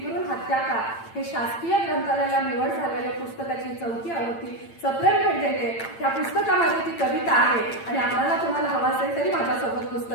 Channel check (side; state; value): right; late; 8.8 ms